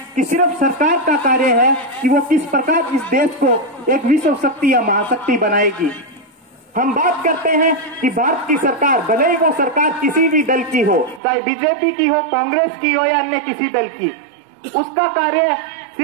कि सिर्फ सरकार का कार्य है कि वो किस प्रकार इस देश को एक विश्व शक्ति या महाशक्ति बनाएगी। हम बात करते हैं कि भारत की सरकार, भले ही वो सरकार किसी भी दल की हो, चाहे बीजेपी की हो, कांग्रेस की हो या अन्य किसी दल की, उसका कार्य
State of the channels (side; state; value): left; drops out; at 11.2 s